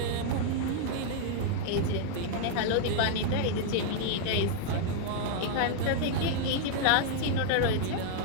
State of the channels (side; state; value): both; different; correlation -0.01